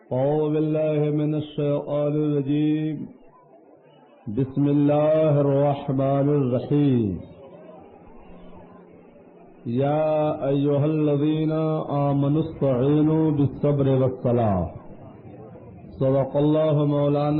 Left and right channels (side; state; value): both; identical; correlation 1.00